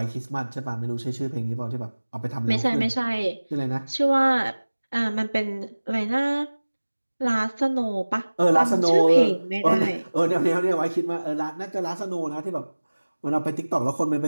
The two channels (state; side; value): inverted; both; correlation -1.00